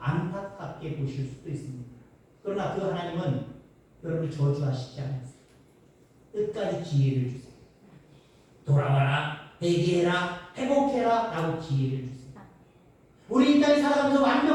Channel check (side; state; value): both; identical; correlation 1.00